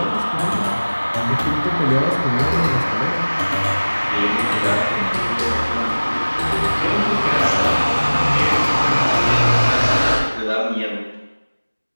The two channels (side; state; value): both; inverted; correlation -1.00